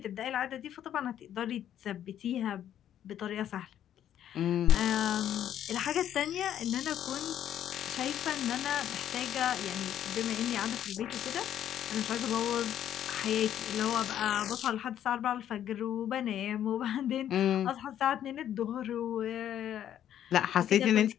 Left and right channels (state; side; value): quieter; right; 10.6 dB